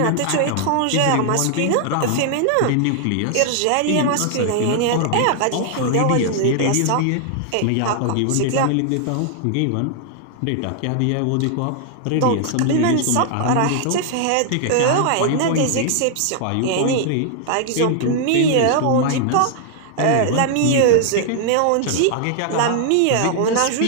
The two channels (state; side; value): different; both; correlation 0.00